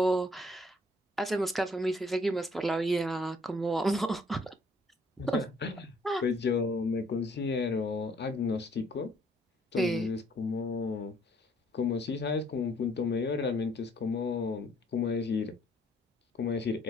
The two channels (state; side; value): normal; both; correlation 0.63